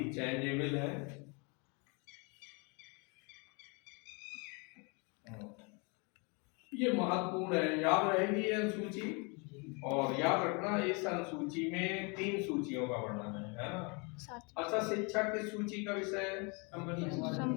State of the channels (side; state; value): right; quieter; 32.1 dB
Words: चेंजेबल है। ये महत्वपूर्ण है, याद रहेगी ये अनुसूची। और याद रखना, इस अनुसूची में 3 सूचियों का वर्णन है ना। अच्छा, शिक्षा किस सूची का विषय है? संवर्ती